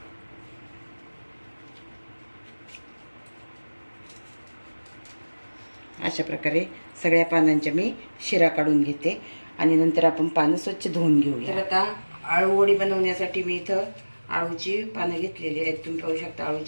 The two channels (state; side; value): inverted; both; correlation -1.00